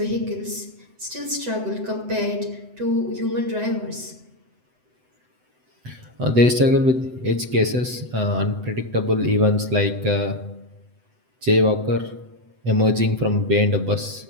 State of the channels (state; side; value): late; left; 7.9 ms